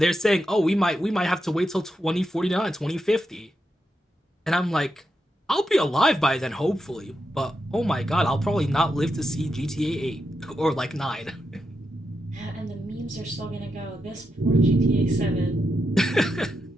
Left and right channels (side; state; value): both; normal; correlation 0.86